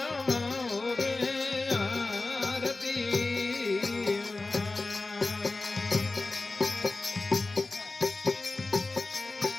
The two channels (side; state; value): right; quieter; 3.4 dB